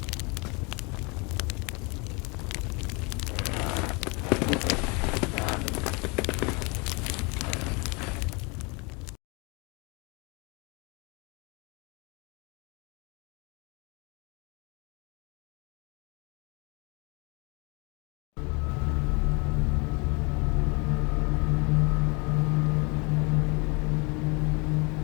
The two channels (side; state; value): right; quieter; 29.5 dB